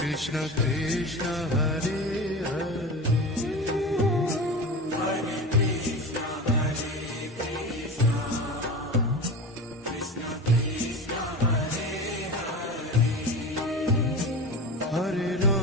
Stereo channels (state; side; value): normal; both; correlation 0.29